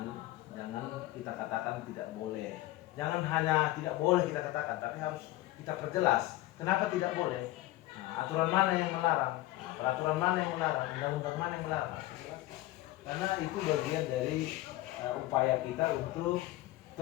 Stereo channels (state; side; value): quieter; right; 17.0 dB